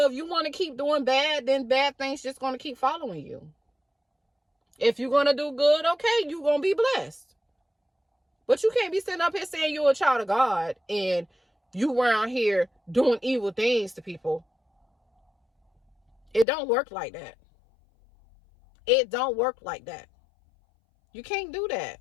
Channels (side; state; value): right; drops out; at 16.4 s